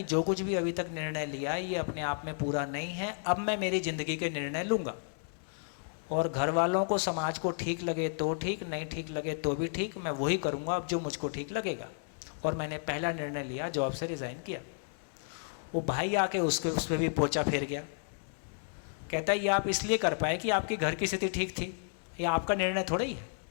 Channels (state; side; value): silent; right; 56 dB below the other